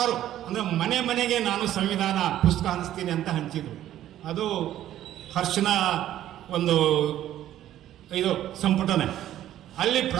ಅಂದರೆ ಮನೆಗೆ ನಾನು ಸಂವಿಧಾನ ಪುಸ್ತಕ ಹಂಚ್ತೀನಿ ಅಂತ ಹಂಚಿದ್ರು. ಅದು ಹರ್ಷನ ಒಂದು ಇದು ಸಂಪುಟನೆ. ಅಲ್ಲಿ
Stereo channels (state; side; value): quieter; left; 12.5 dB